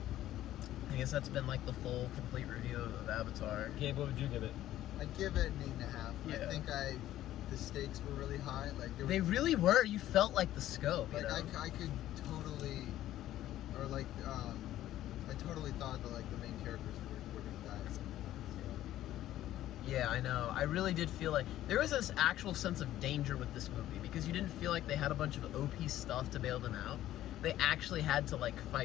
I guess that's been like the full, complete review of Avatar. Gabe, what would you give it? I'd give it an 8.5. Yeah. I think the stakes were really high. Like They really were. You felt like the scope. You like know? I could totally, or like I totally thought that like the main characters were gonna die. Yeah, I know. I really did feel like there was this actual sense of danger with this movie because you didn't feel like they had a bunch of OP stuff to bail them out. They actually had to like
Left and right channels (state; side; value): quieter; right; 13.4 dB